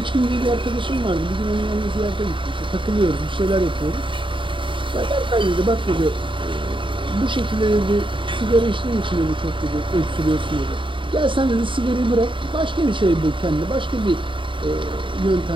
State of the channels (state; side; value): late; left; 0.24 ms